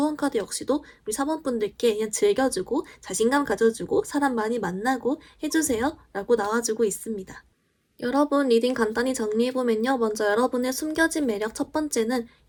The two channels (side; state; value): both; identical; correlation 1.00